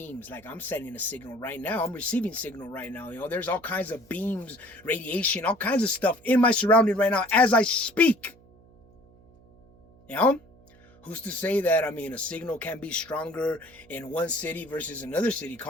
Like, I'm sending a signal right now. I'm receiving signal right now. You know, there's all kinds of beams, radiation, all kinds of stuff in my surrounding right now as I speak. You know? Who's to say that, I mean, a signal can be stronger in one city versus another city,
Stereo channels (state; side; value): noise; right; hum, 27 dB below the sound